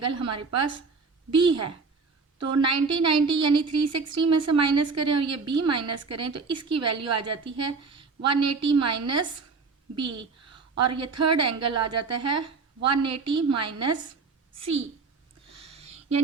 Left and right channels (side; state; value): left; quieter; 4.5 dB